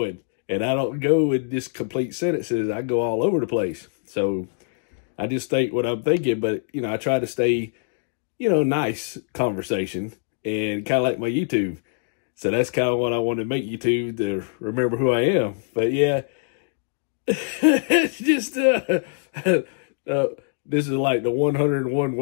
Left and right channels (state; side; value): silent; right; digital silence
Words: and I don't go in just complete sentences. I go all over the place. So I just think what I'm thinking, but, you know, I try to stay, you know, nice conversation, and kind of like my YouTube. So that's kind of what I want to make YouTube, to remember who I am. But yeah, it's just, this is like the 101